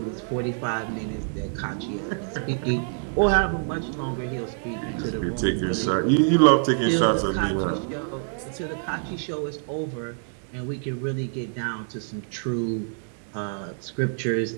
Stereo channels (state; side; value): silent; left; 61 dB below the other